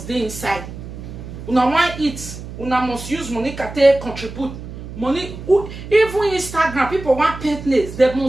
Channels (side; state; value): right; noise; hum, 11 dB below the sound